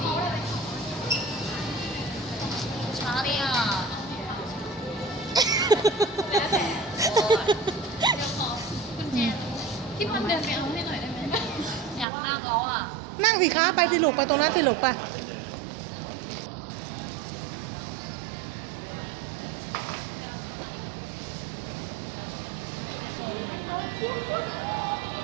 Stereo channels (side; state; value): left; drops out; at 12.1 s